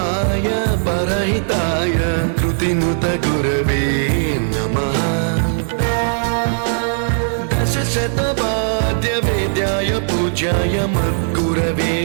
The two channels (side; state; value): left; silent; digital silence